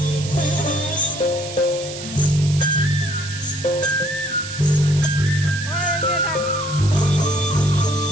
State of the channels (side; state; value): right; noise; hiss, 11 dB below the sound